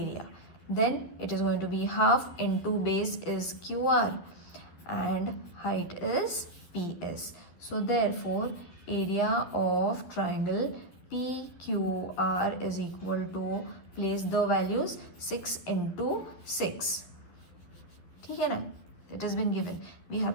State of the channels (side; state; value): right; late; 12 ms